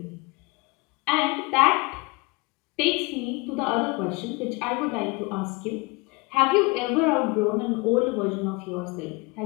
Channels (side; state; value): right; quieter; 26.9 dB